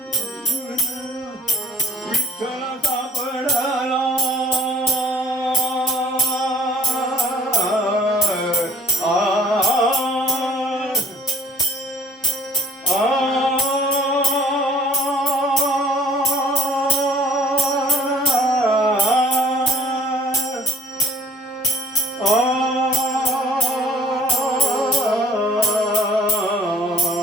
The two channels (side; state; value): both; normal; correlation 0.52